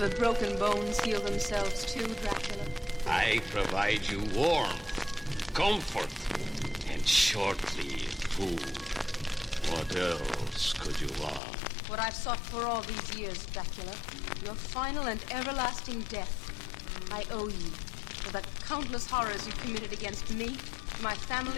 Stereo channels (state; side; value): drops out; right; at 11.4 s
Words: broken bones heal themselves too, Dracula? I provide you warmth, comfort, and shortly food. What else could you want? What I've sought for all these years, Dracula. Your final and everlasting death. I owe you for the countless horrors you committed against me, my